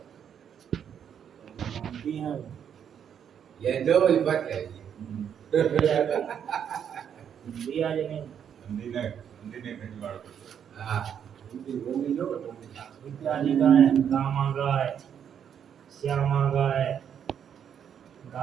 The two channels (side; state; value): left; quieter; 8.4 dB